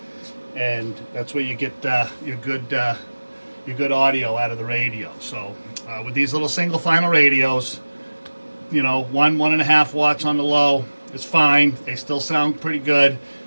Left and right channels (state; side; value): inverted; both; correlation -1.00